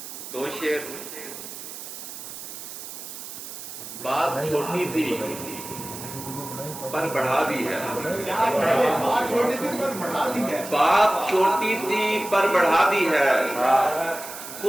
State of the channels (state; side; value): noise; right; hiss, 11 dB below the sound